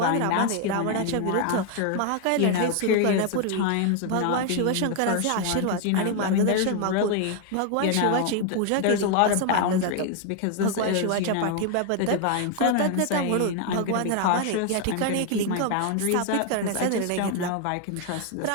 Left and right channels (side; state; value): both; different; correlation 0.00